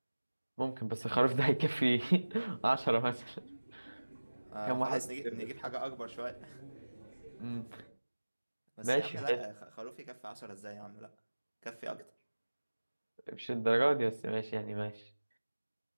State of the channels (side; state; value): both; inverted; correlation -1.00